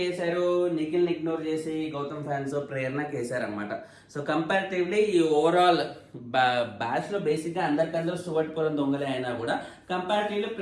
వేశారు? నిఖిల్ని ఇగ్నోర్ చేసి గౌతమ్ ఫ్యాన్స్ ప్రేరణకి వేశారనమాట. సో కంపారిటివ్లీ ఈ ఓవరాల్ బ్యాచ్ లో బేసిక్ గా అందరికందరూ సువట్టుకోవడం దొంగలే అయినా కూడా కంపారిటివ్లీ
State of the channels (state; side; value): identical; both; correlation 1.00